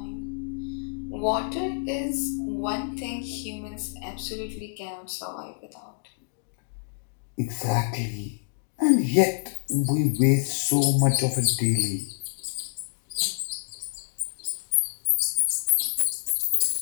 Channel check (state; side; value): silent; right; digital silence